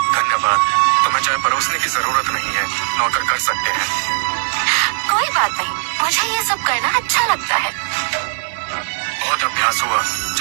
धन्यवाद, तुम्हें चाय परोसने की जरूरत नहीं है, नौकर कर सकते हैं। कोई बात नहीं, मुझे ये सब करना अच्छा लगता है। बहुत अभ्यास हुआ,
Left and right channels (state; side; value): silent; left; digital silence